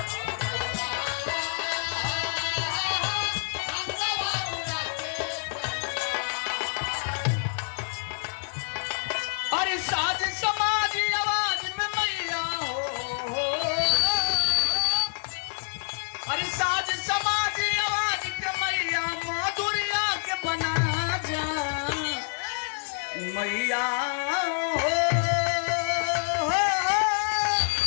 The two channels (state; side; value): silent; right; digital silence